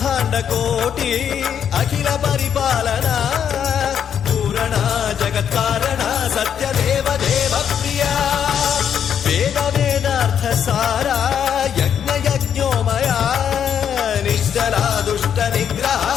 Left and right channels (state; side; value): quieter; right; 8.5 dB